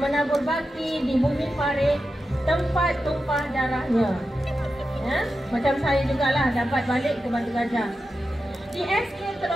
menabur bakti di bumi Parit, tempat tumpah darahnya. Ya, macam saya jugalah dapat balik ke Batu Gajah. Di SK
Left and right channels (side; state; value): both; normal; correlation 0.91